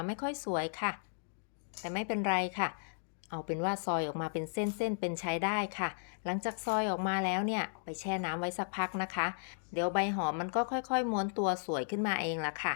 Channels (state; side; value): silent; right; digital silence